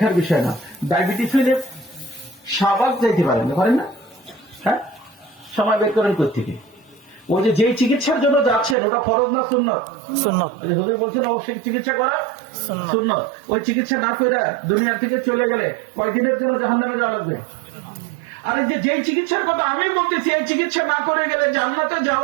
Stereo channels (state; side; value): drops out; left; at 8.8 s